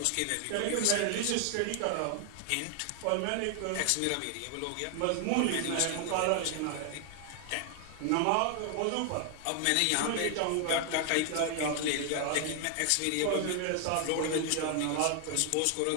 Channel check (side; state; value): both; different; correlation 0.00